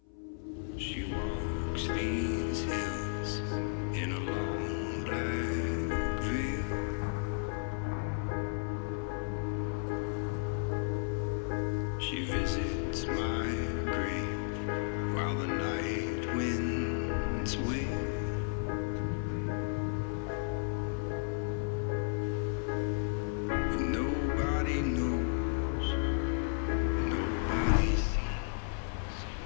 She walks these hills in a long black veil. She visits my grave while the night winds wail. And nobody knows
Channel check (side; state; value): right; silent; 55 dB below the other